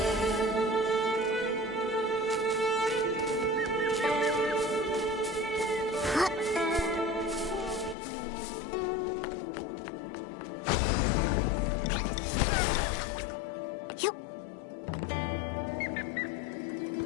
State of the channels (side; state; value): right; drops out; at 8.0 s